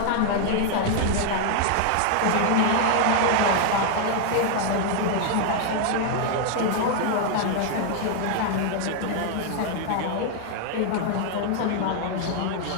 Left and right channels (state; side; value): different; both; correlation 0.00